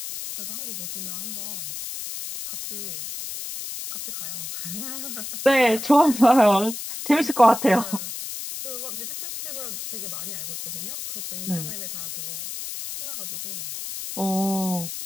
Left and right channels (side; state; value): left; noise; hiss, 7 dB below the sound